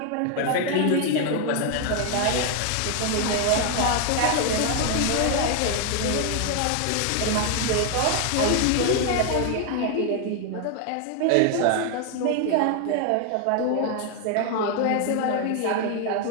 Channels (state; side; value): different; both; correlation 0.00